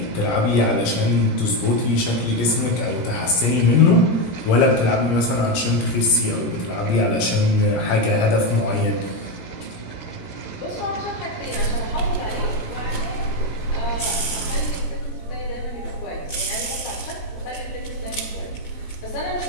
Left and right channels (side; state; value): right; late; 17 ms